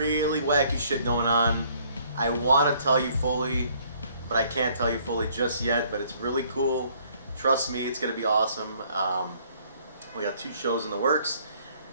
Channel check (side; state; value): both; inverted; correlation -0.62